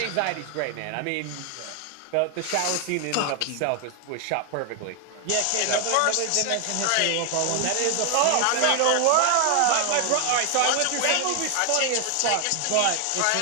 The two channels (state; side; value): different; both; correlation 0.00